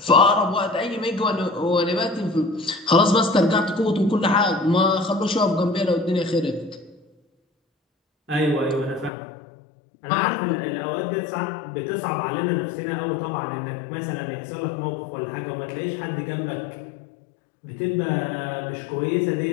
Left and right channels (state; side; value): drops out; right; at 9.1 s